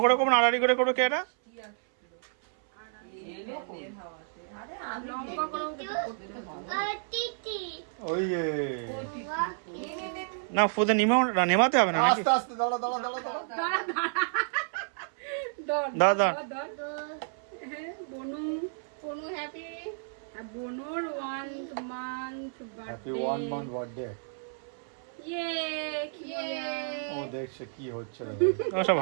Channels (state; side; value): silent; left; 57 dB below the other